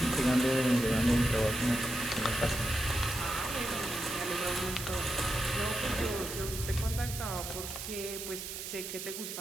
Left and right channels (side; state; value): right; noise; hiss, 7 dB below the sound